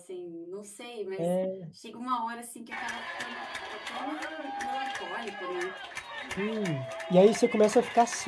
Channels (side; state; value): both; identical; correlation 1.00